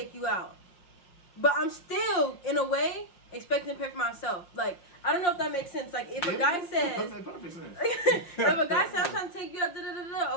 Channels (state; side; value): late; right; 5.6 ms